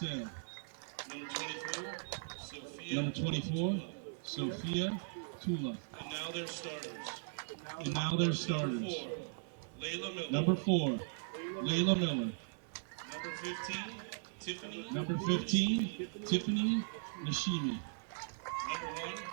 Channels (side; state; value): left; silent; digital silence